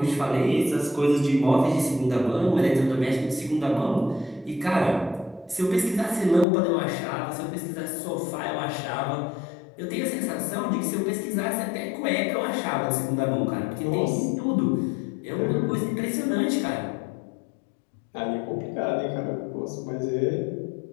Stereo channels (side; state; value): right; drops out; at 6.5 s